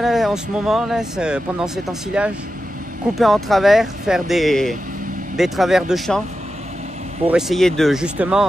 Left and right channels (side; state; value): both; normal; correlation 0.90